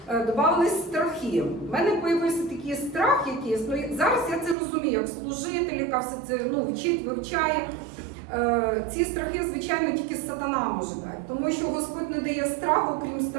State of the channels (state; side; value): drops out; left; at 4.5 s